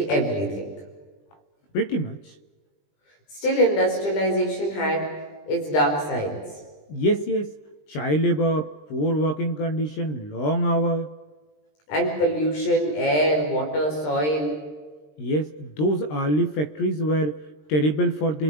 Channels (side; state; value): right; late; 20 ms